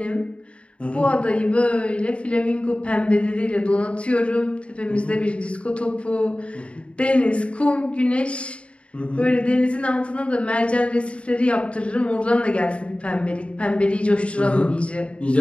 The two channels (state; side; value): late; right; 0.060 ms